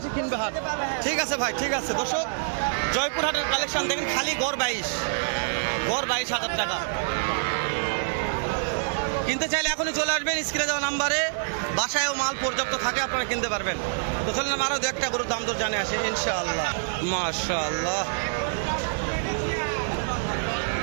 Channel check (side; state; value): left; silent; 61 dB below the other